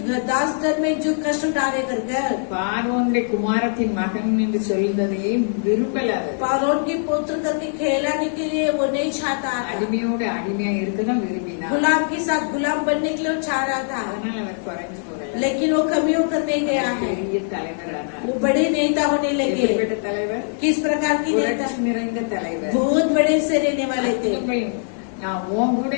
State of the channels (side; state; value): right; silent; 58 dB below the other